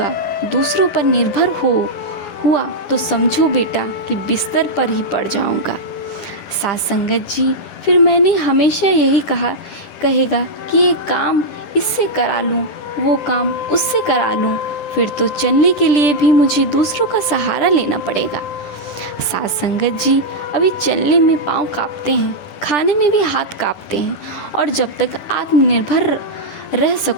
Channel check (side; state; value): right; late; 10 ms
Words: दूसरों पर निर्भर हुआ तो समझो बेटा कि बिस्तर पर ही पड़ जाऊंगा। साथ संगत जी, फिर मैंने हमेशा यही कहेगा कि ये काम इससे करा लूँ, वो काम उससे करा लूँ, फिर तो चलने के लिए भी मुझे दूसरों का सहारा लेना पड़ेगा। साथ संगत जी, अभी चलने में पाँव कांपते हैं, खाने में भी हाथ कांपते हैं, और जब तक आत्मनिर्भर रह